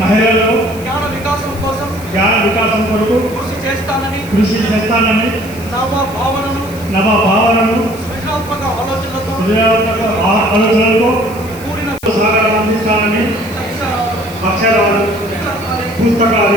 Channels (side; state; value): left; noise; hiss, 19 dB below the sound